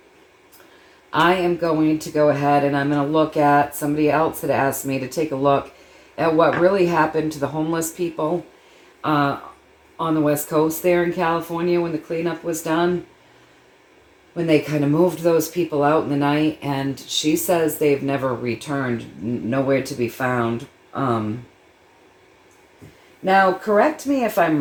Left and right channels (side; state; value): both; identical; correlation 1.00